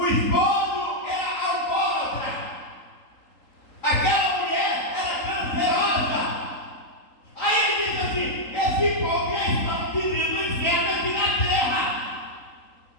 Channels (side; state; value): right; late; 3.8 ms